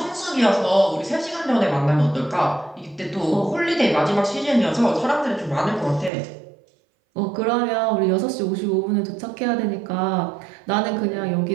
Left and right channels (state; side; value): drops out; left; at 6.1 s